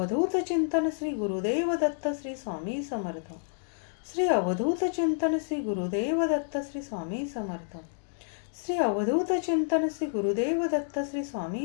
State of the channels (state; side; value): silent; right; digital silence